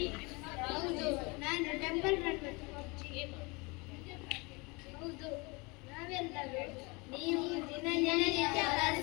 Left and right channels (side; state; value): right; quieter; 27.4 dB